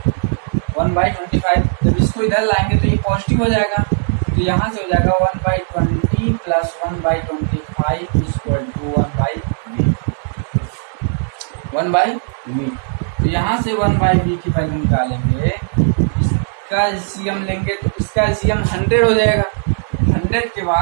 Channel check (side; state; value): left; silent; digital silence